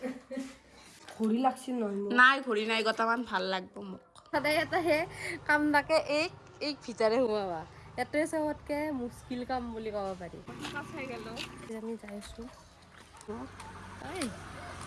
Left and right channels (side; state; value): both; identical; correlation 1.00